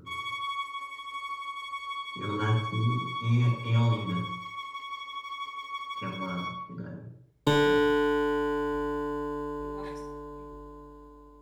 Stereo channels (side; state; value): both; identical; correlation 1.00